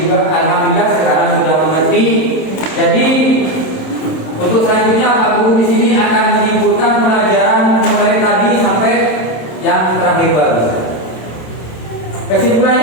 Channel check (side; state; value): right; late; 27 ms